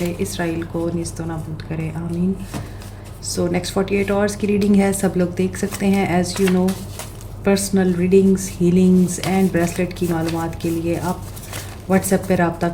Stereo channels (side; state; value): both; identical; correlation 1.00